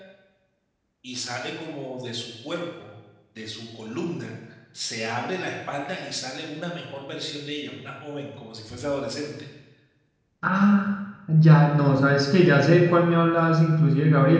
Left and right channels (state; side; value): identical; both; correlation 1.00